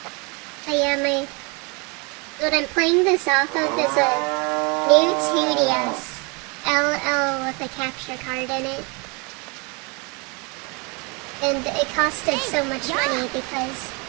But yeah, what I'm playing this off of is a new 2DS LL with a capture card in it. And it costed so much money because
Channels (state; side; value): quieter; left; 30.6 dB